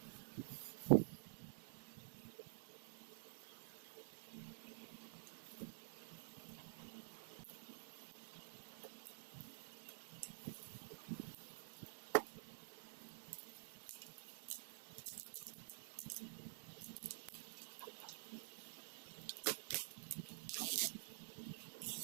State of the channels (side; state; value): left; silent; digital silence